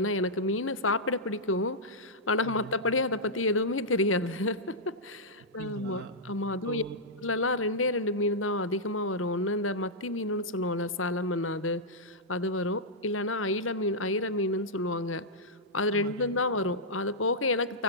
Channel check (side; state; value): both; normal; correlation -0.10